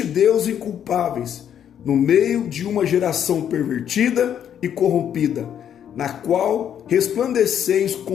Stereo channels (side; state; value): right; quieter; 9.3 dB